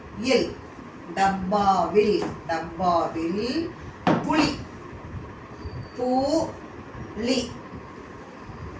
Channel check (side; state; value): both; identical; correlation 1.00